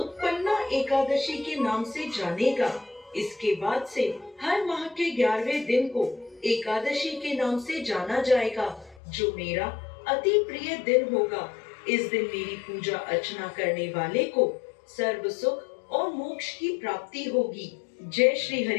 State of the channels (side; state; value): right; drops out; at 9.0 s